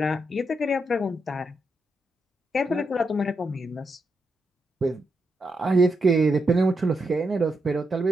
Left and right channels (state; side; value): normal; both; correlation 0.83